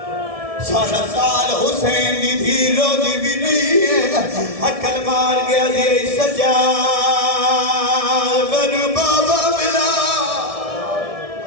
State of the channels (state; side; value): late; left; 1.7 ms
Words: سارا سال حسین دی دھی رو دی بھی نہیں ہے عقل مار گیا دی سجاد بنو بابا ملا